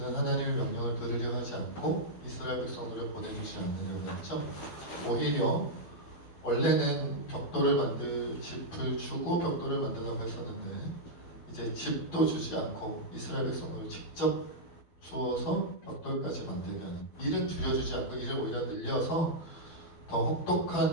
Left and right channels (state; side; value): late; right; 12 ms